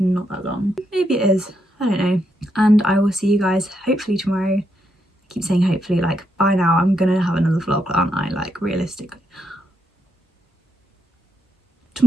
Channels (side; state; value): both; normal; correlation 0.79